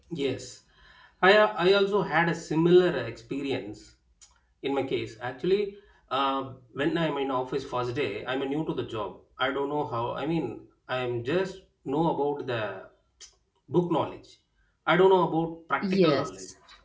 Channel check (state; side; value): identical; both; correlation 1.00